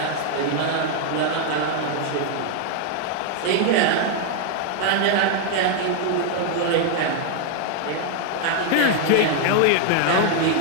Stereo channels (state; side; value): different; both; correlation 0.00